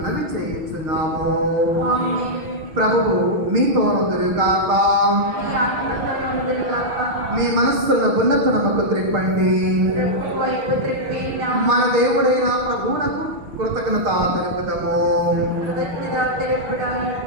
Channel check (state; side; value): late; left; 6.5 ms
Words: చేయించున్నాము. ప్రభువు మీతో ఉందురుగాక. మీ మనస్సులను ఉన్నతనముకు త్రిప్పండి. మన దేవుడైన ప్రభువునకు కృతజ్ఞత తెలుపుదాము.